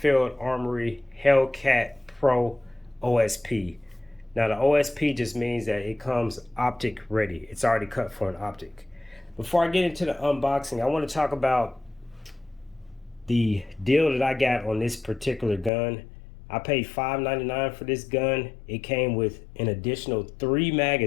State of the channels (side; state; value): right; drops out; at 15.7 s